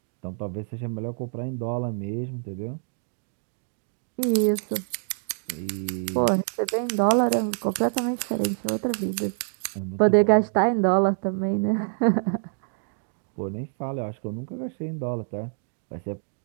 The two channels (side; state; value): left; silent; 56 dB below the other